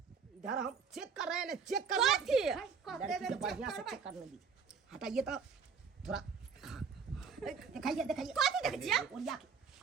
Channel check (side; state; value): left; quieter; 5.9 dB